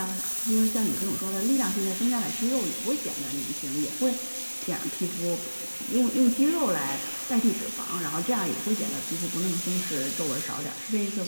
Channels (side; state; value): both; inverted; correlation -1.00